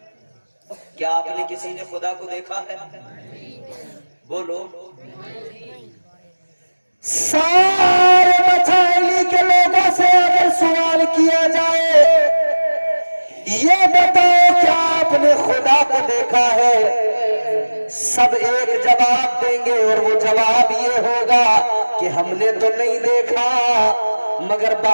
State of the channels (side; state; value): both; inverted; correlation -1.00